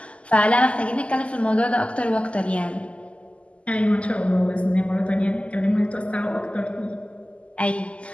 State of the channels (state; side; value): late; right; 0.058 ms